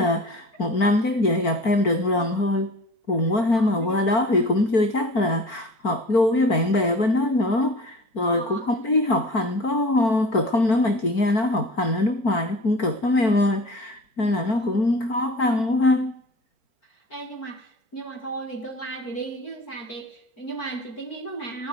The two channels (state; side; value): late; right; 4.5 ms